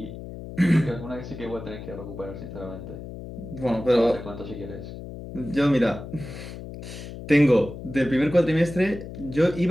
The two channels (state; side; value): noise; left; hum, 11 dB below the sound